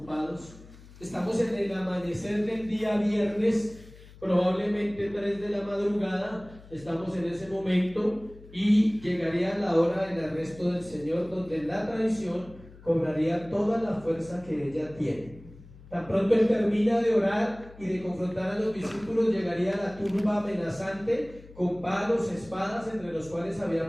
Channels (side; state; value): left; noise; hum, 20 dB below the sound